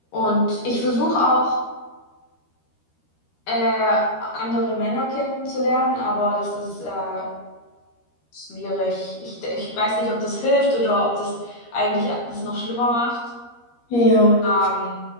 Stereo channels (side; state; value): right; late; 13 ms